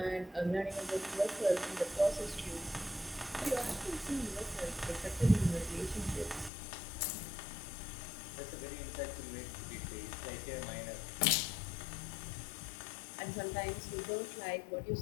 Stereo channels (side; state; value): right; drops out; at 6.5 s